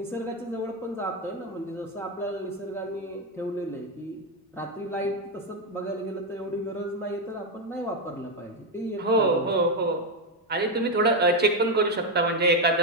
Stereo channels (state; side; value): normal; both; correlation 0.06